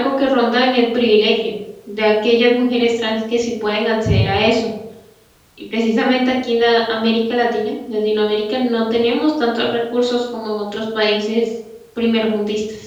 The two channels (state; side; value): identical; both; correlation 1.00